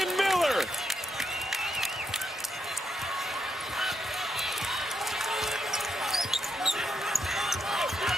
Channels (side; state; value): both; normal; correlation 0.80